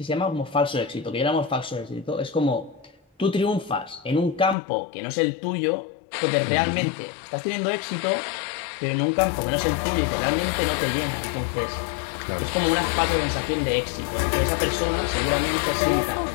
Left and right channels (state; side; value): drops out; right; at 4.5 s